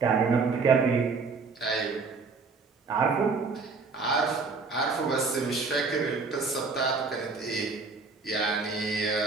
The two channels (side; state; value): left; quieter; 4.5 dB